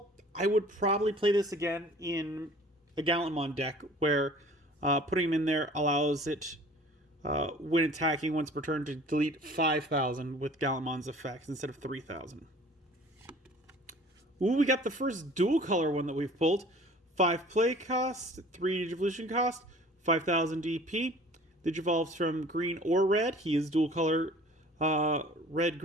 I would probably play this again in a Gallantmon deck where putting him in there allows it, when attacking once per turn, to delete 5,000 with Gallantmon's effects instead of 3,000. Ooh, we got the first dual color one that we've pulled. 5 play cost, 3 Digivolution cost, 5,000 DP. Digivolves from green or red. He is dual color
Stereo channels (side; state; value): both; normal; correlation 0.48